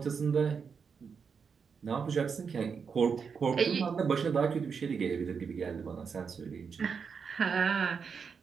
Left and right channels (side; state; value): left; quieter; 6.0 dB